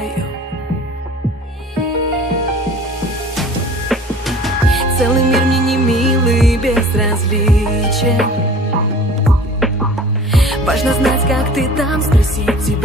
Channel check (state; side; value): normal; both; correlation 0.44